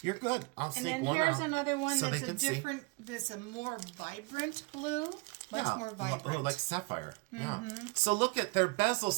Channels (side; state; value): left; quieter; 28.6 dB